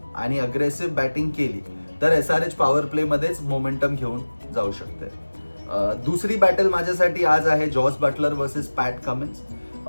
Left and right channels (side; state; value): both; inverted; correlation -1.00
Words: आणि अग्रेसिव्ह बॅटिंग केली तर SRH पॉवर प्लेमध्येच मोमेंटम घेऊन जाऊ शकते. दुसरी बॅटल माझ्यासाठी आज आहे जॉस बटलर वर्सेस पॅट कमिन्स.